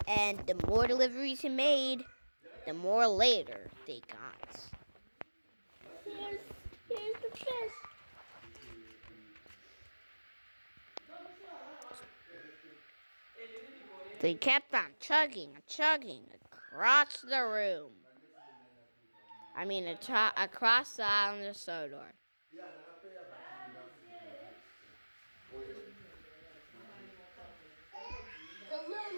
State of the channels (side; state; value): both; inverted; correlation -1.00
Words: And the more deliveries he made, the more later they got. Here's the fish. They kept on chugging across the room. Across the island of Sodor. The load